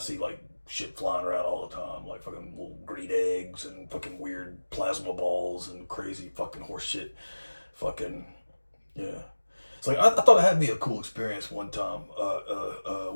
like shit flying around all the time, like fucking little green eggs and fucking weird plasma balls and crazy fucking horse shit. Fucking yeah. It's like I thought it had to be a cool experience one time.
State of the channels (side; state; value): both; inverted; correlation -1.00